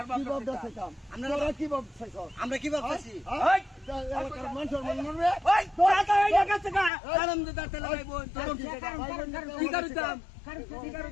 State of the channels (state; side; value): drops out; right; at 6.9 s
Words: ভাব দাইতাম তোরা কি ভাব চাইছ আমরা কি ভাবতেছি এই এলাকার মানুষের মন মরবে ওই তোরা তো এই জায়গা থেকে কারণ দিতে তেল ভাই বোন কি করতাম কি